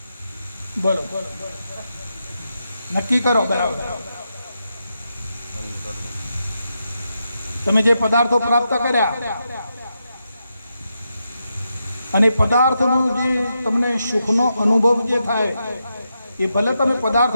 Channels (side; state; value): both; inverted; correlation -0.85